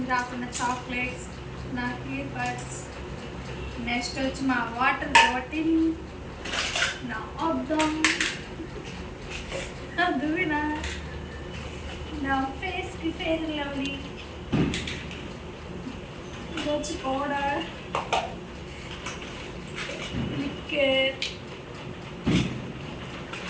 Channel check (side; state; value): both; identical; correlation 1.00